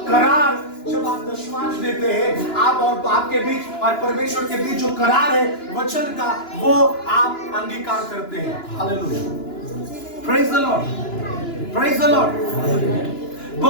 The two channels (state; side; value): late; right; 2.9 ms